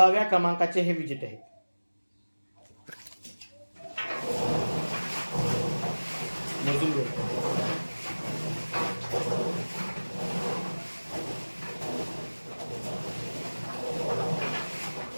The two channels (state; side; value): inverted; both; correlation -1.00